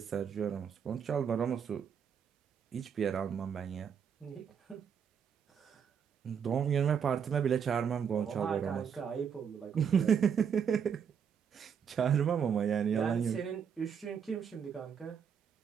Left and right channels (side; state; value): left; quieter; 7.4 dB